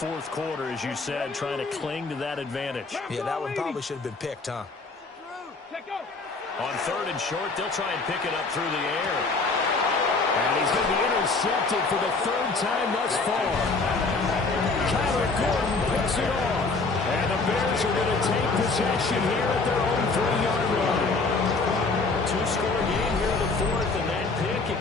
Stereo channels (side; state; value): right; quieter; 3.9 dB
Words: quarter, as you said, trying to cling to that advantage. Yeah, that one probably should have been picked, huh? On 3rd and short, they'll try and pick it up through the air. And he's going to be intercepted for the 3rd time thus far. Kyler Gordon picks it off. And the Bears are going to take possession here at their own 3-yard line. 2-score game here in the 4th, and that pick, it